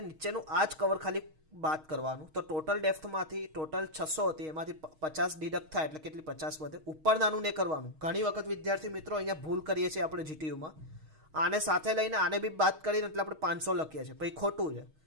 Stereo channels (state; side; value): late; left; 6.4 ms